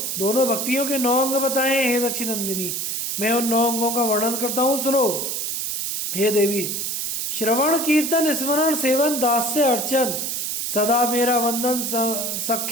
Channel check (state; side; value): noise; right; hiss, 2 dB below the sound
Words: दोनों भक्तियों के 9 अंग बताए हैं। हे दक्षिणनंदिनी, मैं उन 9 अंगों का वर्णन करता हूँ, सुनो। हे देवी, श्रवण कीर्तन स्मरण सेवन दास्य अर्चन, सदा मेरा वंदन